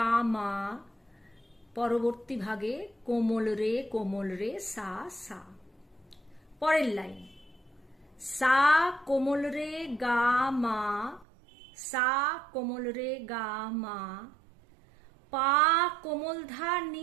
মা, পরবর্তী ভাগে কোমল রে সা সা। পরের লাইন সা কোমল রে গা মা, সা কোমল রে গা মা, পা কোমল ধা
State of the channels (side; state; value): left; drops out; at 11.2 s